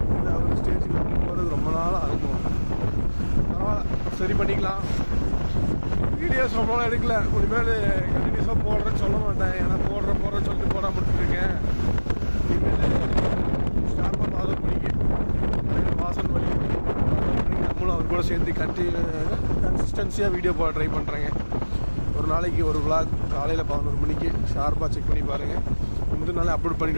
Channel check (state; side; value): inverted; both; correlation -1.00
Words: இந்த அவர் ஸ்டேஜுக்கு போகிறது ரொம்ப நாள் ஆகும். சரி பண்ணிக்கலாம். வீடியோஸ் ரொம்ப நாள் எடுக்கல. இனிமேல் கண்டினியூஸாக போடுறேன்னு சொல்ல மாட்டேன். ஏன்னா போடுறேன்னு சொல்லிட்டு போடாமல் விட்டுருக்கேன். இனிமேல் ஸ்டார்பாக பாதம் பண்ணிக்க வாசல் வழி நம்மளும் அவர் கூட சேர்ந்து கன்சிஸ்டன்சியாக வீடியோ போட ட்ரை பண்ணுறேங்க. ஒரு நாளைக்கு ஒரு vlog காலையில் 11 மணிக்கு ஷார்ப்பாக செக் பண்ணி பாருங்கள். முந்தின நாளே அப்லோட்